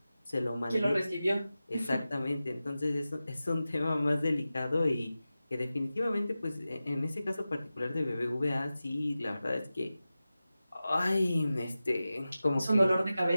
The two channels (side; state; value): both; inverted; correlation -0.94